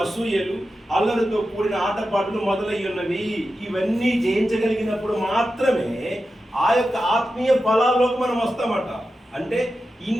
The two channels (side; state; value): both; normal; correlation 0.91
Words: అసూయలు, అల్లరితో కూడిన ఆటపాటలు మొదలయ్యున్నవి. ఇవన్నీ జయించగలిగినప్పుడు మాత్రమే ఆ యొక్క ఆత్మీయ ఫలాల్లోకి మనం వస్తామట. అంటే